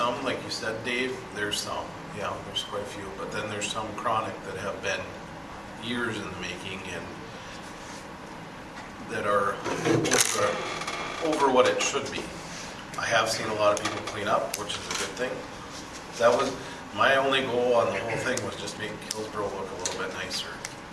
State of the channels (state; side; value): identical; both; correlation 1.00